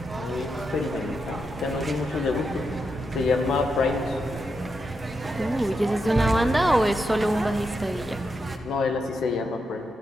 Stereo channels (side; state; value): both; normal; correlation 0.84